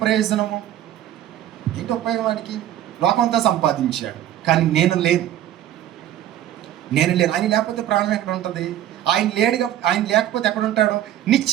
ప్రయోజనము? ఏంటి ఉపయోగం వాడికి? లోకమంతా సంపాదించాడు, కానీ నేను లేను. ఆయన లేకపోతే ప్రాణం ఎక్కడ ఉంటుంది? ఆయన లేకపోతే ఎక్కడ ఉంటాడు?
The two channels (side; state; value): left; quieter; 12.2 dB